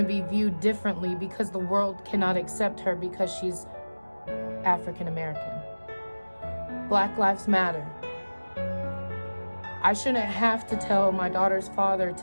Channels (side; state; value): both; inverted; correlation -1.00